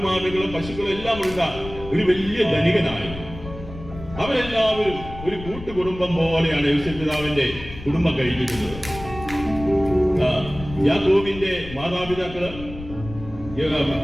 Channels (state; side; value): noise; left; rumble, 13 dB below the sound